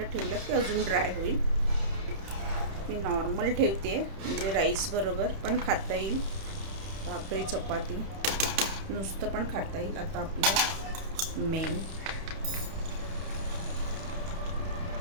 ठेवलं की अजून ड्राय होईल. मी नॉर्मल ठेवते म्हणजे राईस बरोबर पण खाता येईल. भाकरी चपाती नुसतं पण खाता येईल. आता आपलं मेन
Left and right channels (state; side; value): late; left; 31 ms